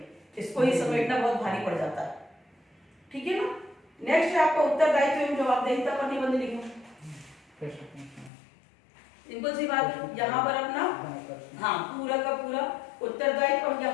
इसको ही समेटना बहुत भारी पड़ जाता है, ठीक है ना। नेक्स्ट है आपका उत्तरदायित्व एवं जवाबदेहिता पर निबंध लिखना। सिंपल सी बात है, यहाँ पर अपना हाँ पूरा का पूरा उत्तरदायित्व, और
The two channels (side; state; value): right; drops out; at 8.3 s